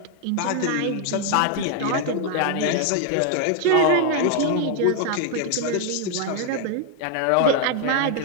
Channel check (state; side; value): different; both; correlation 0.00